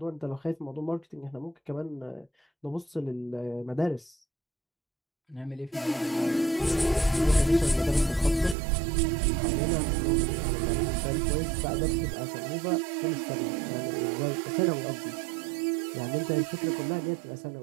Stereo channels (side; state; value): left; drops out; at 8.6 s